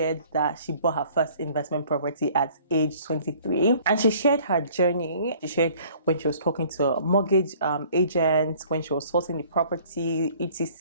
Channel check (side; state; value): both; inverted; correlation -0.54